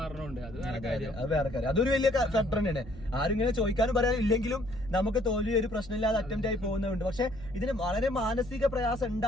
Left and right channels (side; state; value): left; noise; hum, 18 dB below the sound